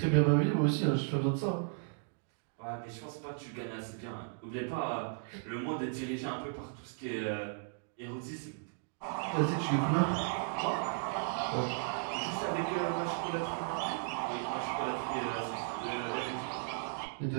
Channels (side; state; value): left; silent; digital silence